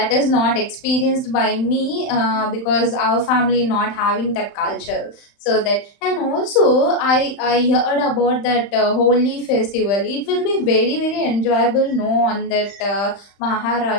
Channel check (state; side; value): late; right; 35 ms